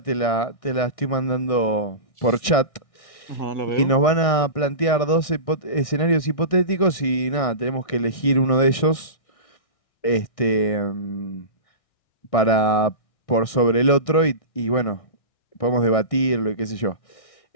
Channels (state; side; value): late; right; 1.6 ms